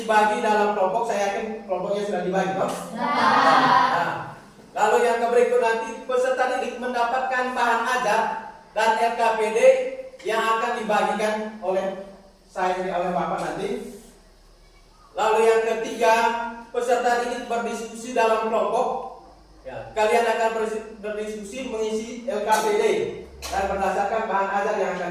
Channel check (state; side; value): identical; both; correlation 1.00